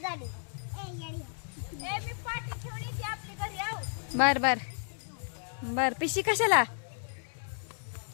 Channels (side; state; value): right; silent; digital silence